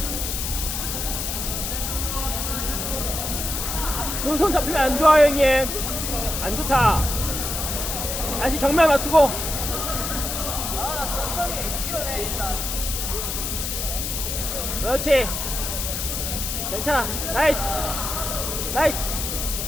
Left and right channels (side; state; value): left; noise; hiss, 3 dB below the sound